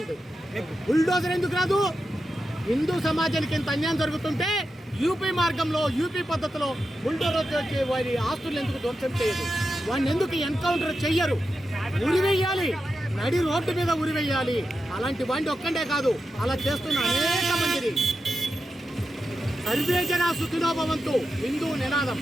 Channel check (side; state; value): both; normal; correlation 0.89